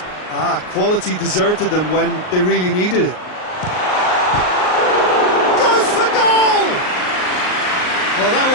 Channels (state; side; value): late; right; 38 ms